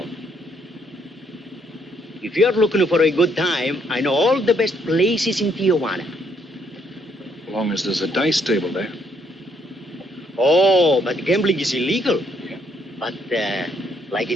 If you're looking for a good time, I know all the best places in Tijuana. As long as there's a dice table there. Oh, but gambling is illegal. Yeah. But, like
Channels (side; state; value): both; normal; correlation 0.71